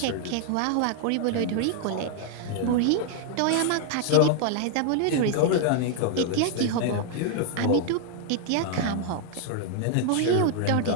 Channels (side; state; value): both; different; correlation 0.00